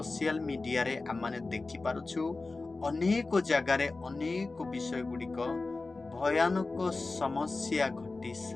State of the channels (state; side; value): quieter; right; 3.6 dB